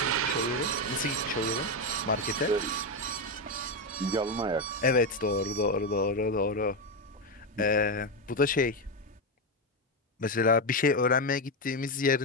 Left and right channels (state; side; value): normal; both; correlation 0.09